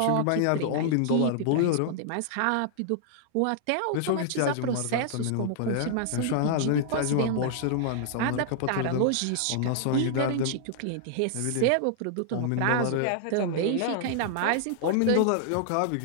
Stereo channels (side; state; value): both; different; correlation -0.01